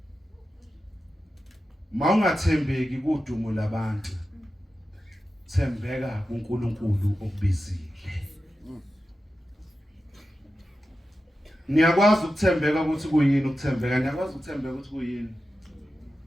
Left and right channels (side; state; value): both; normal; correlation 0.92